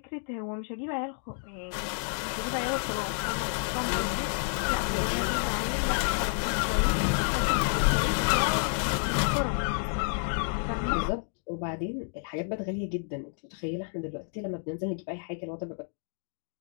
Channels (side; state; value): right; silent; 58 dB below the other